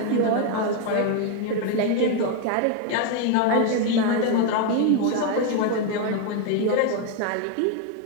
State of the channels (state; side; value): different; both; correlation 0.01